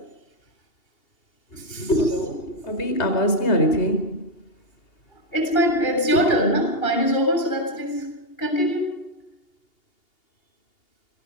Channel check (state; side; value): late; right; 2.8 ms